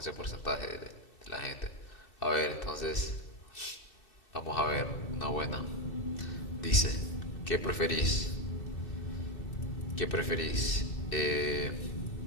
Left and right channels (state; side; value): late; right; 2.6 ms